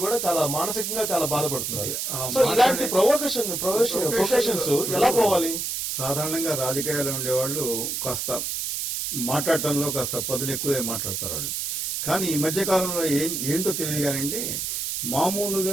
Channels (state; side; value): noise; right; hiss, 2 dB below the sound